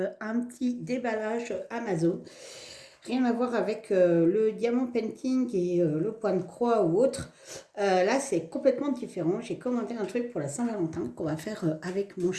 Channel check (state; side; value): identical; both; correlation 1.00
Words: petit déballage Amazon. Rien à voir avec le diamant painting et le point de croix ou autre. Là, c'est complètement différent. J'ai commandé un truc pour la Saint-Valentin qu'on va faire avec mon